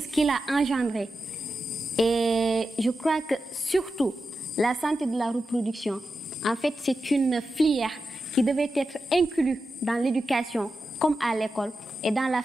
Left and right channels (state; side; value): normal; both; correlation 0.91